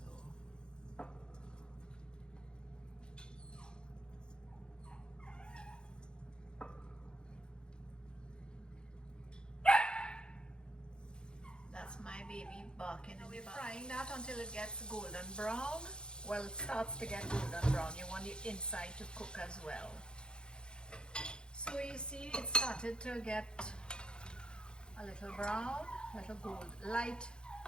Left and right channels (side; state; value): right; late; 0.049 ms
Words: That's my baby barking. We're frying that until it gets golden brown. Well, it starts to get golden brown. You want the inside to cook as well. So you see it started to get a little brown, a little light